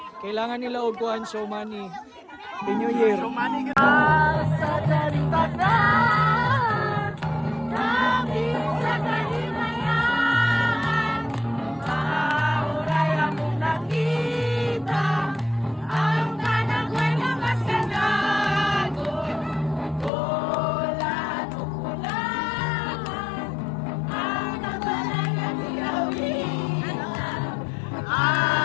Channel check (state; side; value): drops out; right; at 20.1 s